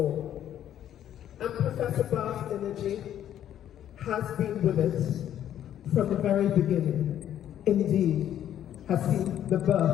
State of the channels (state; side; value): quieter; right; 10.9 dB